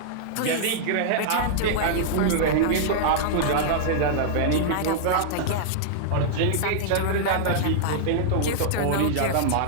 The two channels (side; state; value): both; different; correlation -0.01